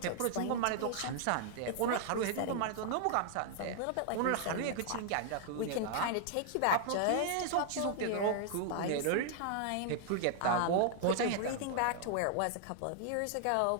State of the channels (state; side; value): different; both; correlation 0.00